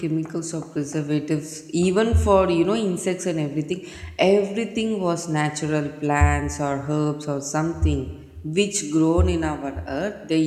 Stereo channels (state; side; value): identical; both; correlation 1.00